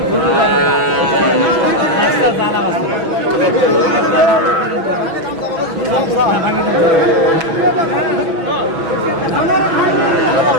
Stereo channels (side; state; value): left; late; 6.1 ms